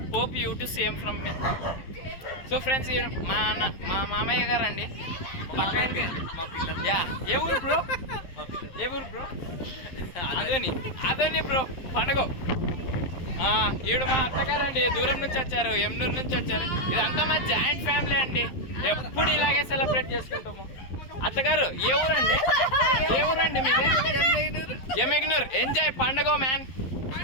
Hope you to same from me. So friends మా మామయ్య గారు అండి, పక్క ఏ ఊరు బ్రో? ఏ ఊరు బ్రో? అదోని బ్రో పండుగ. ఈవిడ మా అత్తగారు అండి, దూరం నుంచి వచ్చారు, ఎమ్నూరు నుంచి వచ్చారు. ఇదంతా మా జాయింట్ ఫ్యామిలీ అండి, ఎప్పుడు ఇలాగే సెలబ్రేట్ చేసుకుంటాము. అత్తగారు ఏ ఊరండి? ఏ ఊరండి మీది? ఎమ్మెగ్నూర్. ఎంజాయ్ పండుగ మ్యాన్,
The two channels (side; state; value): right; late; 12 ms